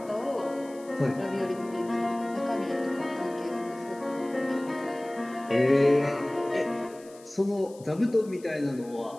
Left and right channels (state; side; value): noise; left; hiss, 24 dB below the sound